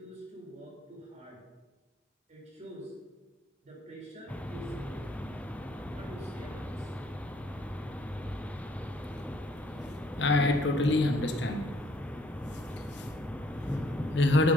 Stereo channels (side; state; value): both; normal; correlation 0.64